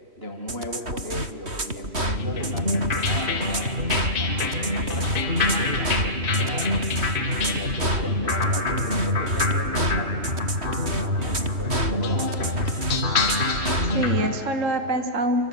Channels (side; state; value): left; late; 3.2 ms